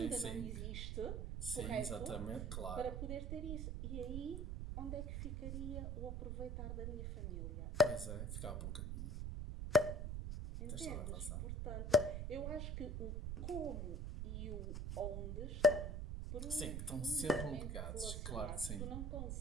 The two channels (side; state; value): right; noise; rumble, 2 dB below the sound